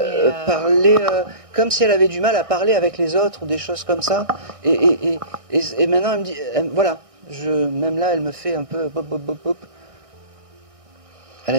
parler comme si elle avait du mal à parler avec les autres ou des choses comme ça. Et maintenant elle me dit, voilà, même là elle me fait un peu bop, bop, bop, bop. Elle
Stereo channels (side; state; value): left; late; 1.6 ms